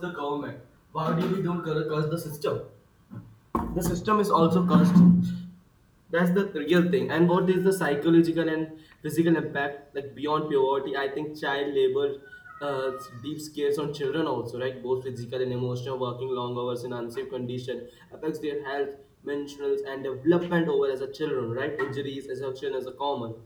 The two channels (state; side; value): identical; both; correlation 1.00